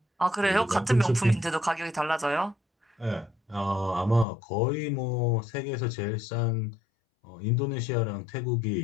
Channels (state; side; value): drops out; right; at 4.2 s